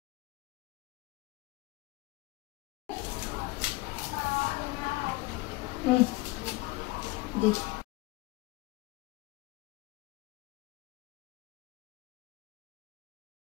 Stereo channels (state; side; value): quieter; right; 21.7 dB